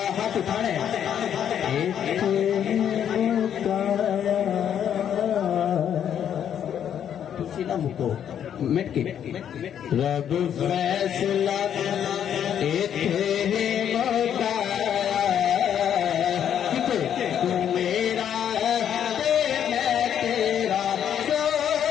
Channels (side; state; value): right; quieter; 9.3 dB